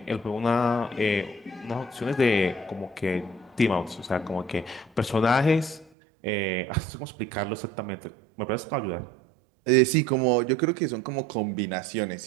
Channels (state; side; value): drops out; left; at 5.9 s